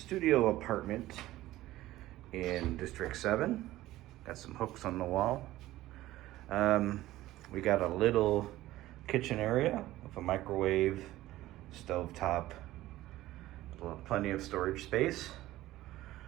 apartment in District 7. Got some hooks on the wall. We got a little kitchen area with a microwave, stovetop, plenty of storage space.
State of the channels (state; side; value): quieter; left; 15.9 dB